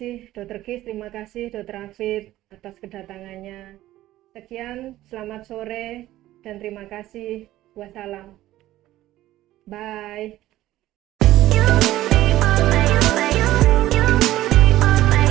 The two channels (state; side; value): quieter; left; 15.1 dB